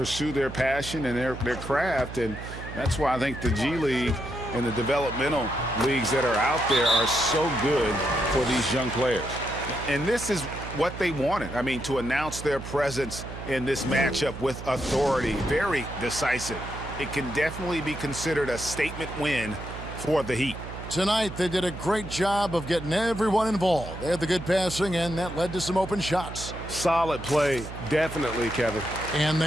their passion and their craft, and that's why I think the G League and the developmental leagues that are out there are so good for these young players. And this is what they wanted. I mean, to announce their presence in this matchup with authority, very decisive. It can definitely be considered a statement win for the Heat. Tonight, they did a great job of getting everyone involved. They had the good passing, and that led to some open shots. Solid play, definitely, Kevin. And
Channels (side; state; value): right; noise; hum, 10 dB below the sound